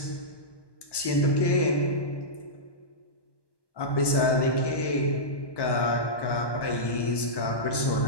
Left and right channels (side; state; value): right; late; 1.2 ms